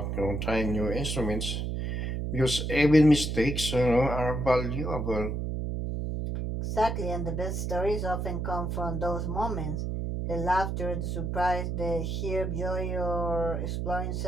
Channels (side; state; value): right; noise; hum, 2 dB below the sound